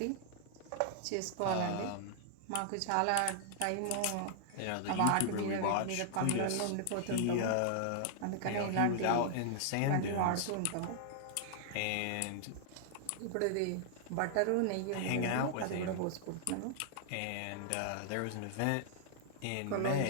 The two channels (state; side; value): different; both; correlation -0.01